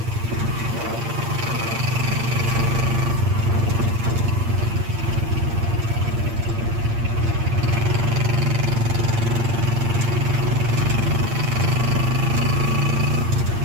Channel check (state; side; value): late; left; 8.7 ms